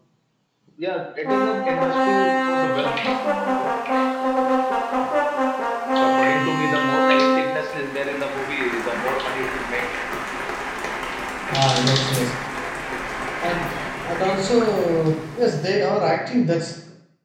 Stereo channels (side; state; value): both; identical; correlation 1.00